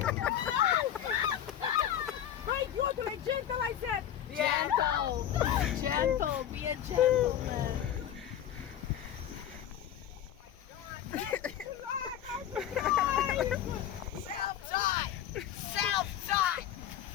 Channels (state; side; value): quieter; right; 10.5 dB